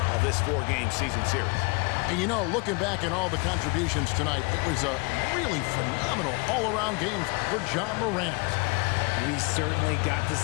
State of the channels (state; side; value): quieter; right; 29.2 dB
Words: of this 4-game season series. And you know, looking back at all the contributions tonight, it was a really phenomenal all-around game for Ja Morant. We certainly got to